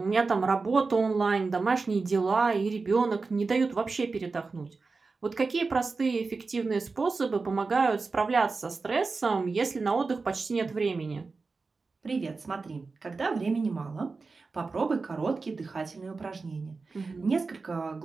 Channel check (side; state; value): left; quieter; 4.1 dB